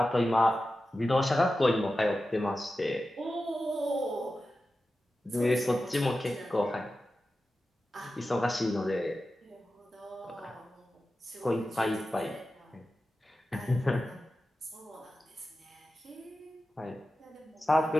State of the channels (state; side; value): normal; both; correlation 0.93